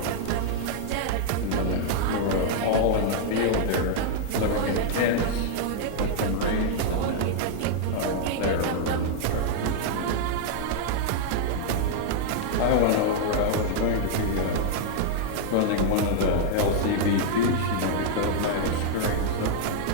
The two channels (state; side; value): different; both; correlation 0.00